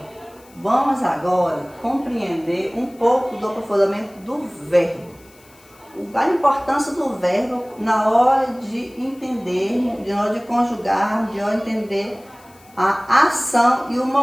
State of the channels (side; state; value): left; noise; hiss, 28 dB below the sound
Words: vamos agora compreender um pouco do aprofundamento do verbo. A importância do verbo na hora de entender, na hora de conjugar, de hora de entender a ação e o